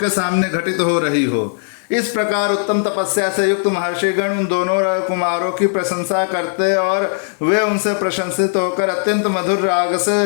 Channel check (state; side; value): silent; right; digital silence